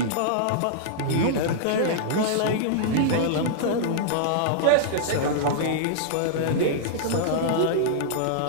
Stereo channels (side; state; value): both; different; correlation -0.02